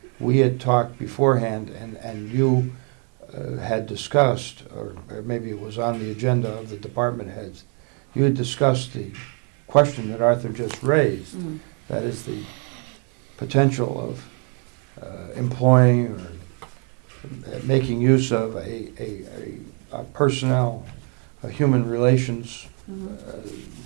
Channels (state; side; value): quieter; left; 38.7 dB